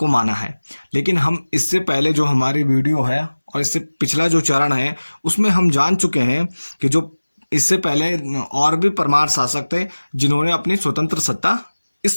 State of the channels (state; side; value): inverted; both; correlation -1.00